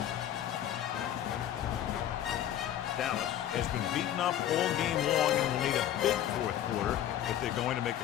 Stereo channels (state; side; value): quieter; right; 11.3 dB